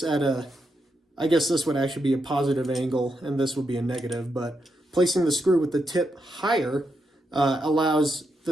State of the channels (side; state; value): both; normal; correlation 0.83